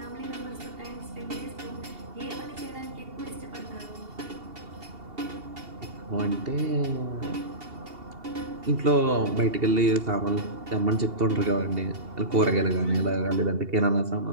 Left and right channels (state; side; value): late; left; 2.8 ms